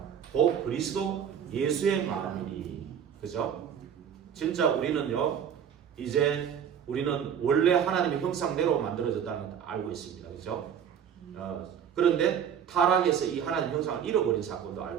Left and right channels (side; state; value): left; quieter; 8.3 dB